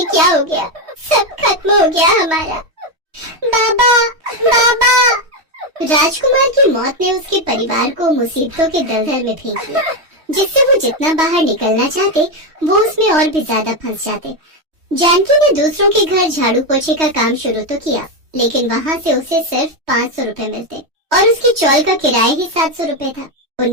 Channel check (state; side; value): late; left; 3.2 ms